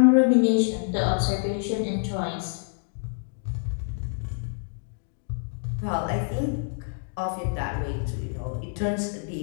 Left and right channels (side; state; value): right; silent; digital silence